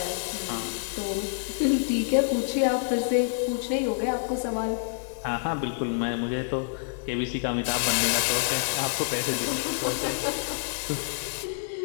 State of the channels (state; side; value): silent; right; digital silence